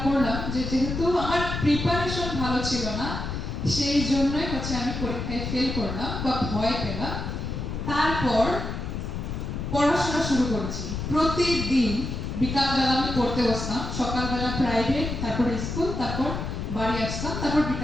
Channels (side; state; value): left; noise; rumble, 4 dB below the sound